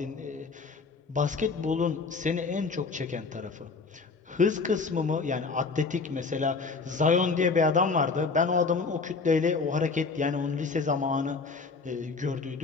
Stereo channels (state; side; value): quieter; right; 4.4 dB